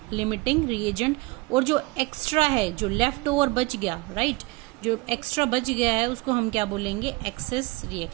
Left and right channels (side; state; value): left; quieter; 24.0 dB